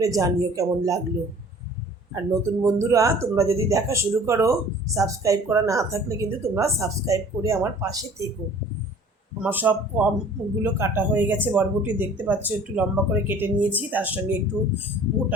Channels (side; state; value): both; normal; correlation 0.49